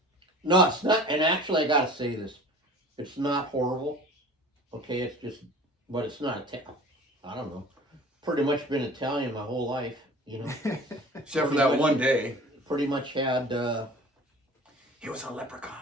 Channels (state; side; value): normal; both; correlation 0.43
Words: no, it's not. And actually, I gotta say this: it's not horrible. Okay, it's just, but it's not. I don't know. Pretty much been Italian my whole life, you know. Except for that one day. Pretty much had. He was a